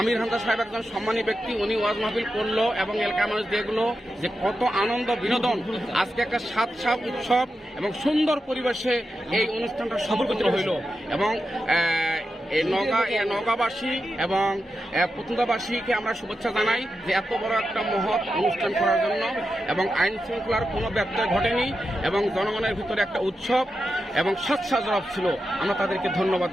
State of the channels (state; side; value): normal; both; correlation 0.89